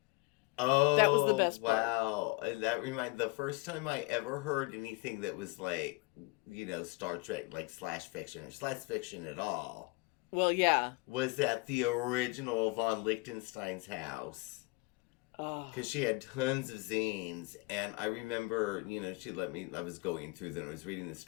Oh, that was the best part. Wow. And that reminds the first time I ever heard anything that was Star Trek, slash fiction or slash fiction at all. Well, yeah. Was at the original von Lichtenstein's house. Because she had tons of zines. And I remember, she let me, I was going through them. I was reading the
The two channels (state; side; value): quieter; right; 26.6 dB